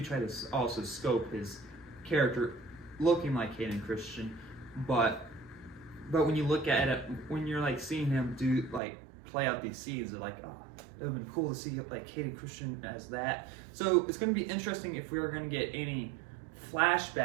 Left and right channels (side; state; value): left; drops out; at 8.8 s